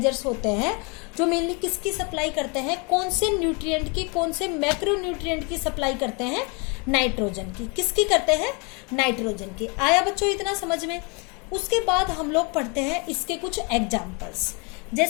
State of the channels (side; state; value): right; quieter; 32.1 dB